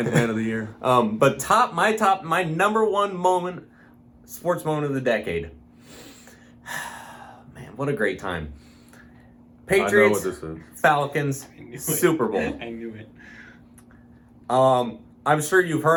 man of the year. But my number one moment, sports moment of the decade. Man, what a great time. I know what Patriots, this is. Falcons, I knew it. Super Bowl. I knew it. I'm sure you've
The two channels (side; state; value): both; identical; correlation 1.00